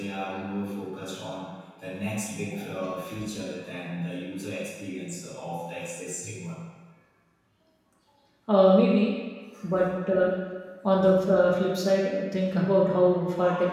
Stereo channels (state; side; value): identical; both; correlation 1.00